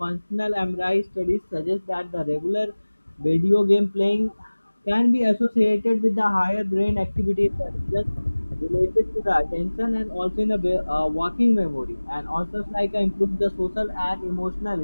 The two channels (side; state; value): both; inverted; correlation -1.00